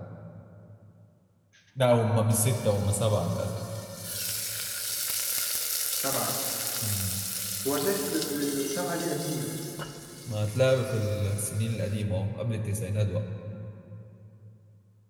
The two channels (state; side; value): identical; both; correlation 1.00